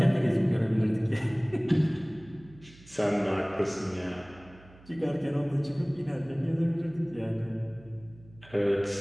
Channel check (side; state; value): right; noise; hum, 23 dB below the sound